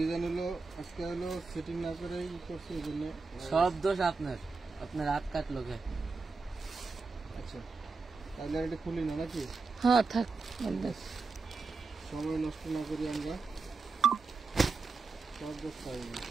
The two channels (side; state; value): left; quieter; 4.2 dB